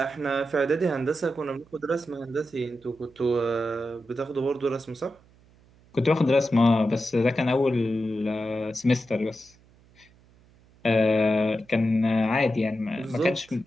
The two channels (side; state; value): right; noise; hum, 29 dB below the sound